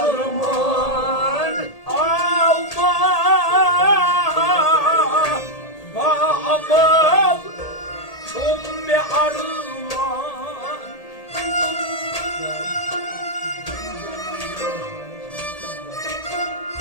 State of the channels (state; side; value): late; right; 1.8 ms